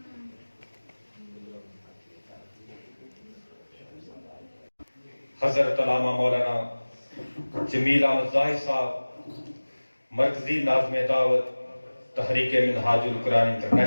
حضرت علامہ مولانا جمیل احمد ظاہر صاحب، مرکزی ناظم دعوت تحریک منہاج القرآن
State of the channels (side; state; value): both; inverted; correlation -1.00